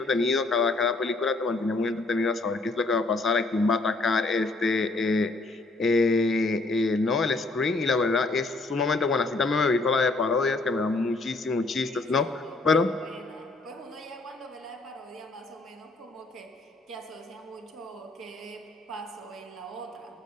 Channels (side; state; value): right; quieter; 3.3 dB